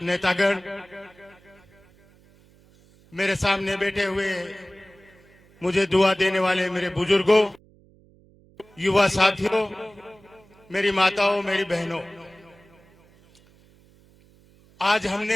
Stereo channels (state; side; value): noise; right; hum, 29 dB below the sound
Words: नेतागण, मेरे सामने बैठे हुए मुझे दुआ देने वाले मेरे बुजुर्गों, युवा साथियों, मेरी माताओं, मेरी बहनों, आज